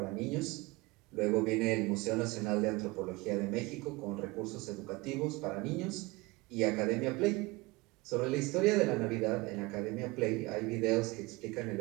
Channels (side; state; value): left; quieter; 23.3 dB